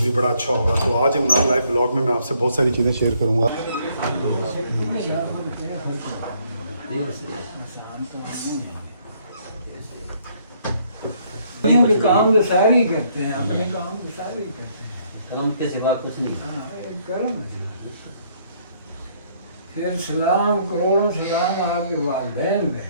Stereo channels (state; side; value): inverted; both; correlation -0.67